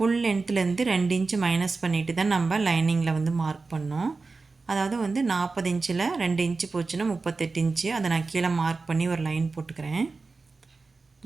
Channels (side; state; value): left; quieter; 4.0 dB